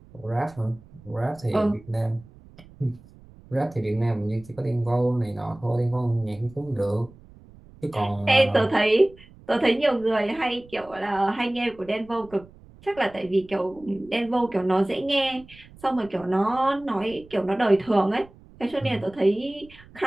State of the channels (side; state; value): right; noise; rumble, 23 dB below the sound